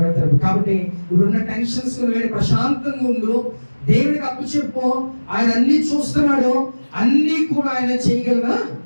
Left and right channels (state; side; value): inverted; both; correlation -1.00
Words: కాబట్టి ఇప్పుడున్న టెన్షన్స్ ప్రశాంతంగా ఉండు, దేవుడికి అప్పు చెప్పు. ఆయన అన్ని చూస్తున్నాడు, అన్ని కూడా ఆయన చేయగలగా